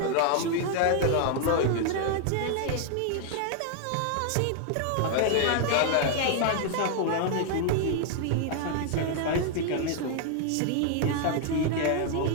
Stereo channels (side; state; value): both; different; correlation 0.00